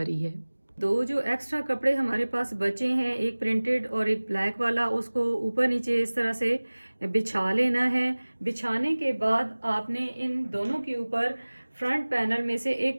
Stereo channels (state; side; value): inverted; both; correlation -1.00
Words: है। दो जो एक्स्ट्रा कपड़े हमारे पास बचे हैं, एक प्रिंटेड और एक ब्लैक वाला, उसको ऊपर नीचे इस तरह से बिछा लेना है। बिछाने के बाद आपने इन दोनों के ऊपर फ्रंट पैनल में से